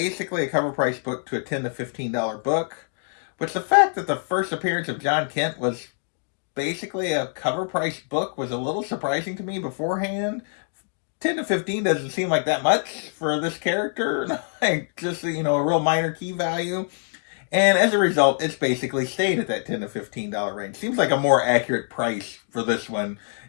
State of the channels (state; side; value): silent; right; digital silence